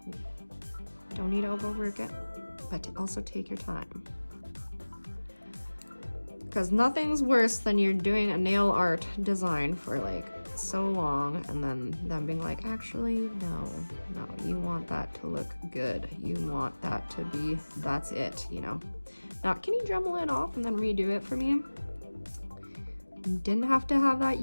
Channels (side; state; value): both; inverted; correlation -1.00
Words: Don't need to overwork it, but also take your time. Because nothing's worse than you're doing a nail art design for like so long and then them being like, actually, no, you want that to look good. You want that to be, that's it, you know. Now, can you Dremel it off and then redo it for me? You didn't have to have that